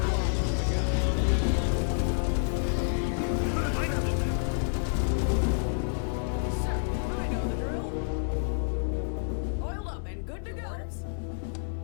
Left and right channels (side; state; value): right; silent; 59 dB below the other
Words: Sir, I know the drill. Oiled up and good to Your go. orders?